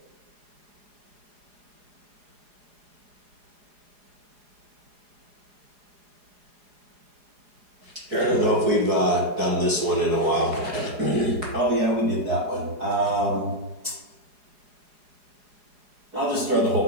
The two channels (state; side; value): late; left; 4.8 ms